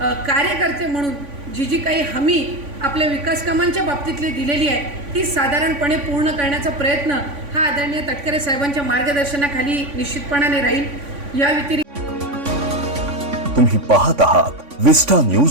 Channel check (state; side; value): late; left; 3.5 ms